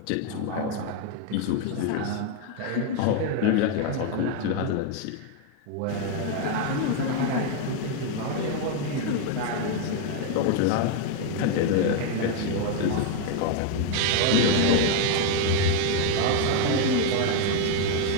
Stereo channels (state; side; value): different; both; correlation 0.01